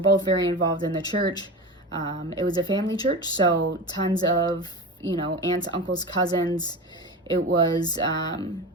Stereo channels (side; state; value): both; normal; correlation 0.27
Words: very involved in the church. It was a family church, so tons of, aunts, uncles, cousins. It was